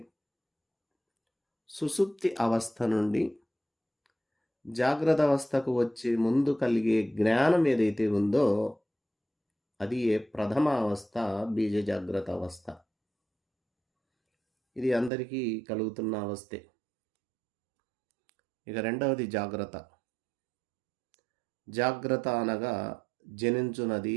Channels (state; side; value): drops out; left; at 15.1 s